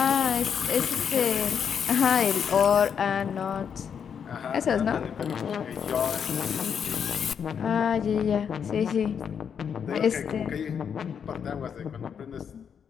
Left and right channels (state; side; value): quieter; right; 7.4 dB